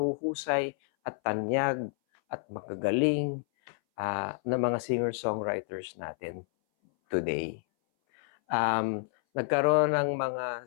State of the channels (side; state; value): right; silent; 58 dB below the other